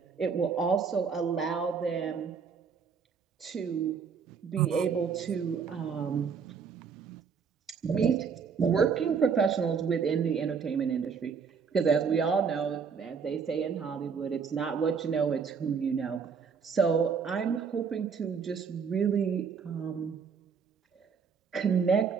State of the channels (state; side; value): quieter; left; 6.1 dB